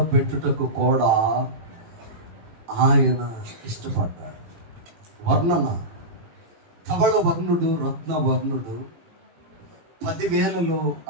పెట్టుటకు కూడా ఆయన ఇష్టపడ్డాడు. వర్ణన, ధవళ వర్ణుడు, రత్న వర్ణుడు, 10,000లో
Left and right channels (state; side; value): late; left; 18 ms